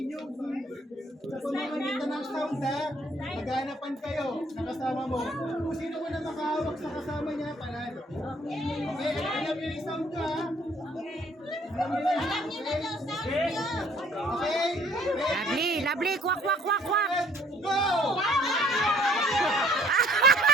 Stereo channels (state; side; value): normal; both; correlation 0.60